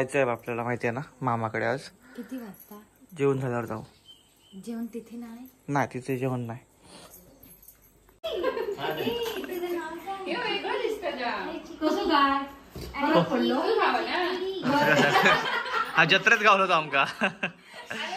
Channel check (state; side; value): identical; both; correlation 1.00